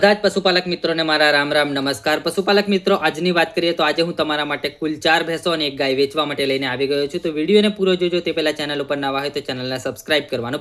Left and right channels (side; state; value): both; identical; correlation 1.00